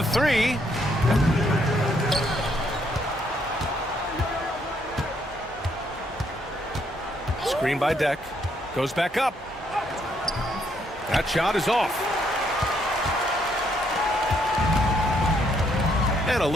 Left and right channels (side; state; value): both; normal; correlation 0.72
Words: three. Screen by Deck. Goes back up. That shot is off. And a